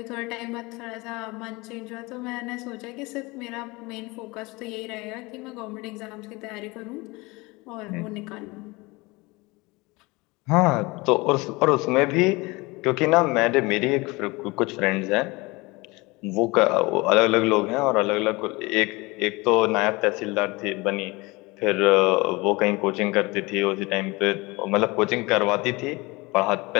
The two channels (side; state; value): right; quieter; 23.9 dB